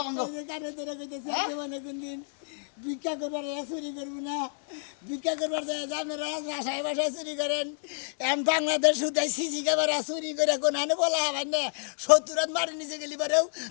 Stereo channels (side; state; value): right; silent; 57 dB below the other